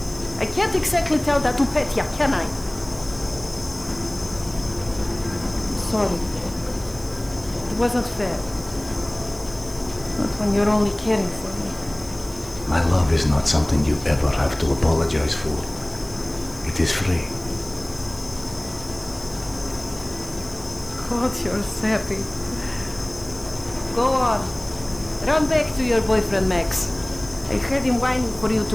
I can't exactly tell that to Petya, can I? Sorry. It wasn't fair. Not when you're only caring for me. My love is not something you ever have to apologize for. It is free. God, you're sappy. Go on. Run back to your boyfriend, Max. I heard him whining for you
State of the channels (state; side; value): noise; right; hiss, 19 dB below the sound